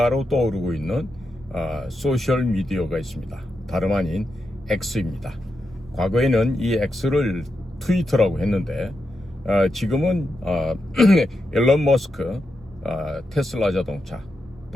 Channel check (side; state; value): both; normal; correlation 0.86